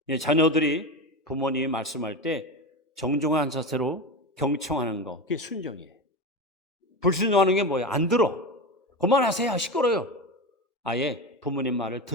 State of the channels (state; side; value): normal; both; correlation 0.22